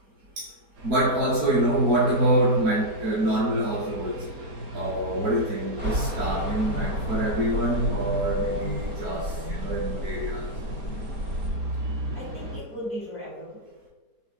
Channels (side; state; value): left; late; 4.3 ms